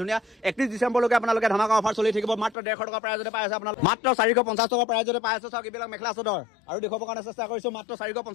ধুনীয়া 31 ডিচেম্বৰলৈকে আপোনালোকে ধামাকা অফাৰ চলি থাকিব মাত্ৰ 150 টকা প্ৰাইজতে পাই আছে আপোনালোকে মাত্ৰ 450 টকা প্ৰাইজতে পাই আছে চাওক এইবিলাক মেখেলা চাদৰ আৰু দেখুৱাবৰ কাৰণে চেষ্টা কৰিছো মাত্ৰ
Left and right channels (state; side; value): drops out; right; at 2.6 s